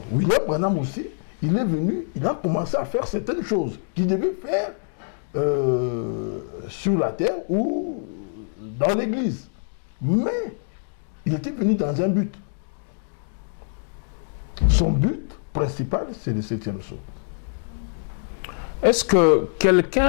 William Branham aussi, il est venu, il a commencé à faire certaines choses qu'il devait faire sur la terre ou dans l'église. Mais il était venu dans un but. Son but principal, c'est le 7e sceau. Est-ce que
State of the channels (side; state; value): right; silent; digital silence